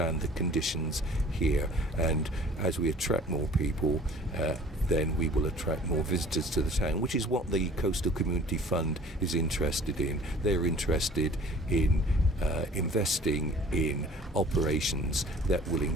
the conditions here. And as we attract more people, then we will attract more visitors to the town, which is what the Coastal Community Fund is interested in. They're interested in investing in operations that will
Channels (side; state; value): both; normal; correlation 0.48